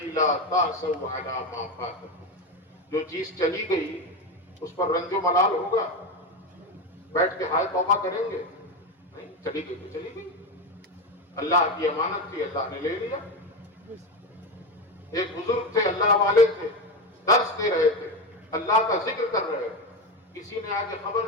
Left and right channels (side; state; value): both; normal; correlation 0.16